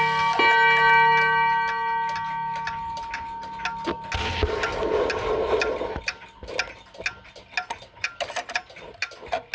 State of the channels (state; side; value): identical; both; correlation 1.00